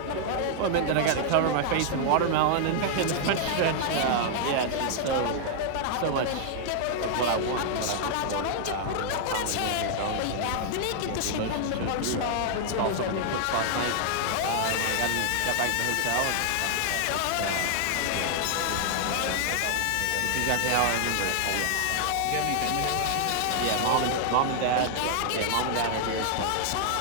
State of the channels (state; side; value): different; both; correlation 0.00